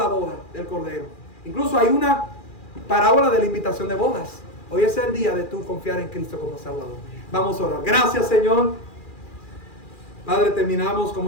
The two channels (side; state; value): right; late; 2.4 ms